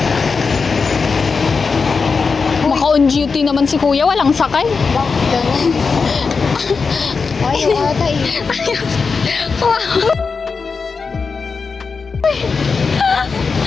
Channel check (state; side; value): quieter; right; 4.9 dB